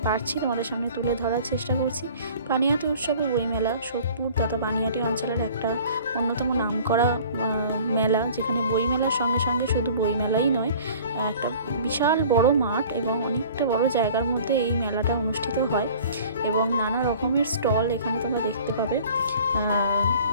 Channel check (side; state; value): both; inverted; correlation -0.48